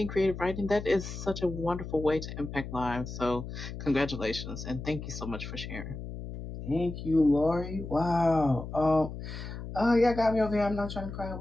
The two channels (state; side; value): noise; left; hum, 9 dB below the sound